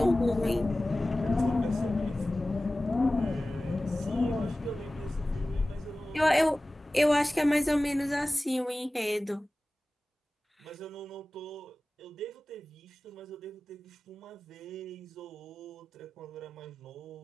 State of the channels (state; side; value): normal; both; correlation 0.97